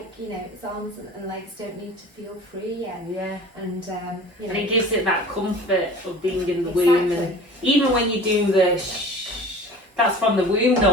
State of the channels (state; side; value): normal; both; correlation 0.42